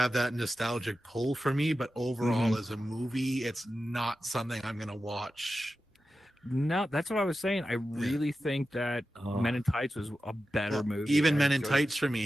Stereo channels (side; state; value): both; normal; correlation 0.92